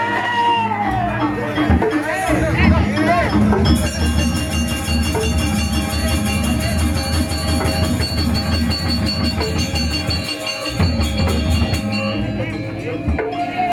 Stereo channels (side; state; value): both; identical; correlation 1.00